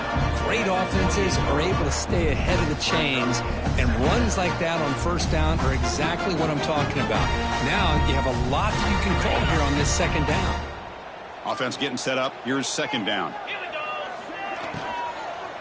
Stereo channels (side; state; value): both; identical; correlation 1.00